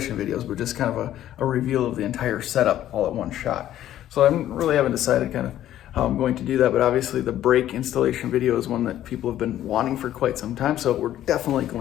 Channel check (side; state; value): right; quieter; 12.4 dB